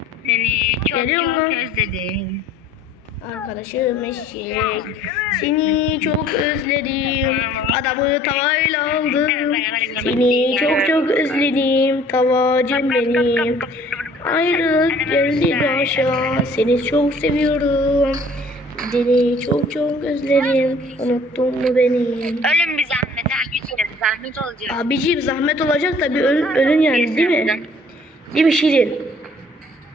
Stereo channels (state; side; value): normal; both; correlation 0.54